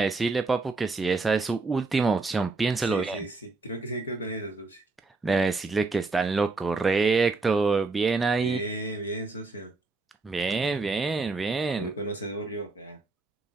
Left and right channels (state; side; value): quieter; left; 3.7 dB